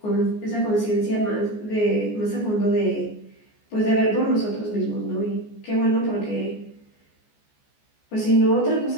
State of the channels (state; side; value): late; right; 14 ms